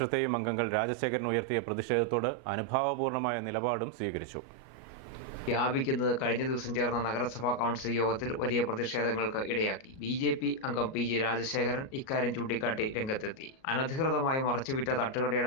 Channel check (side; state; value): right; late; 37 ms